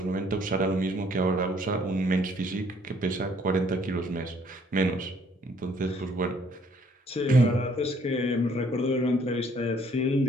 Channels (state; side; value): normal; both; correlation 0.63